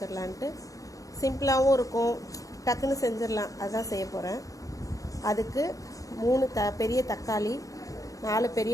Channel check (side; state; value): right; late; 0.17 ms